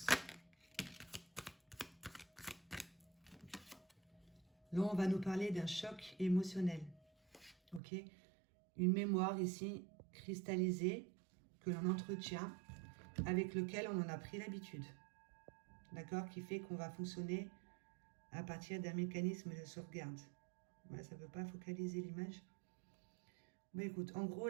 Là, on va nous parler d'un choc émotionnel. Ok? Une mémoire ici cristallisée que l'on entretient, avec lequel on en a pris l'habitude. D'accord? Qui fait qu'on va fonctionner à partir d'un mécanisme de sauvegarde. Ouais, ça ne veut pas focaliser l'image. Bon, écoute, en gros,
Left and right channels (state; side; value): drops out; left; at 7.8 s